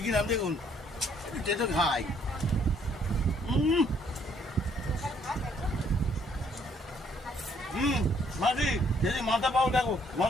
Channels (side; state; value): both; normal; correlation 0.65